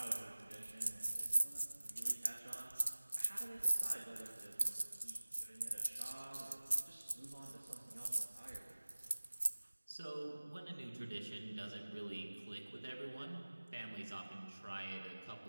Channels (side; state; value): both; inverted; correlation -1.00